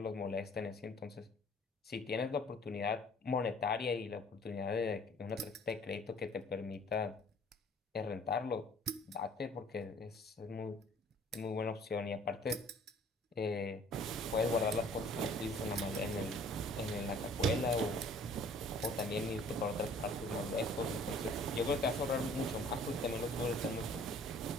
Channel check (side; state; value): both; normal; correlation 0.54